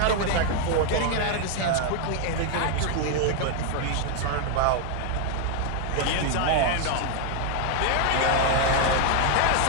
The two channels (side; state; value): both; different; correlation 0.00